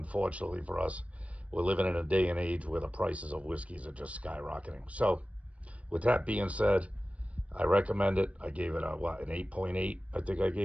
for us, we're living in a day and age where the prices of whiskeys are just skyrocketing. So, with that being said, I recommend it. I gave it an 8.8, I think I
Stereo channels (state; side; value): late; left; 0.065 ms